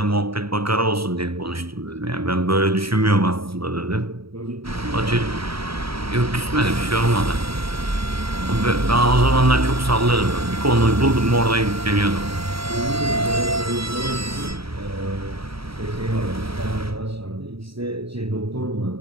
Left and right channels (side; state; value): left; late; 0.75 ms